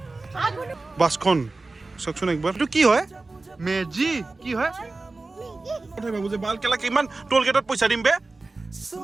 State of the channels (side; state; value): left; quieter; 3.4 dB